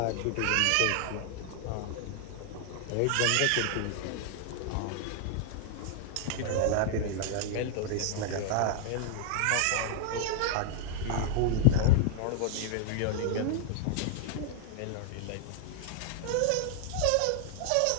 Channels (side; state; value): both; different; correlation 0.00